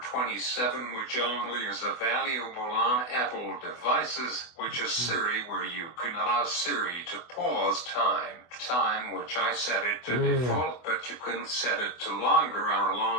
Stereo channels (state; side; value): late; right; 24 ms